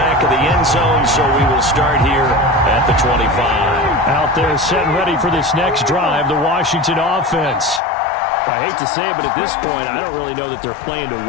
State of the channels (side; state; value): right; drops out; at 7.8 s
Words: of the end zone, so we will start here at the 25. Out there set and ready for this next drive, the Washington offense. I hate to say it, but at this point, I don't really know that they're playing to